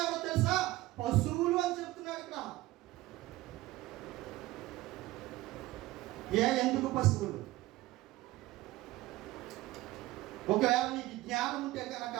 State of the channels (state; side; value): quieter; left; 17.7 dB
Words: ఎవరో తెలుసా? పశువులు అని చెప్తున్నాడు ఇక్కడ. ఎందుకు పశువులు? ఒకవేళ నీకు జ్ఞానం ఉంటే కనుక